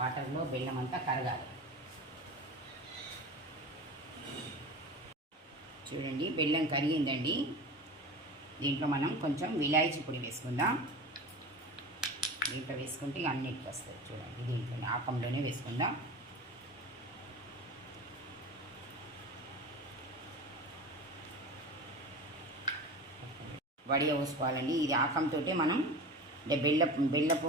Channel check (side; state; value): both; normal; correlation 0.32